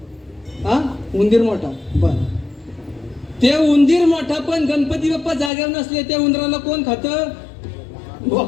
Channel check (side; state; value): right; drops out; at 5.5 s